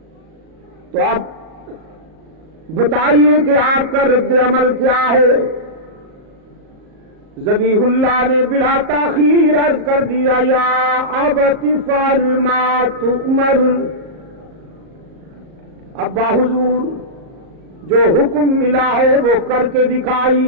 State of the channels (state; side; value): late; left; 38 ms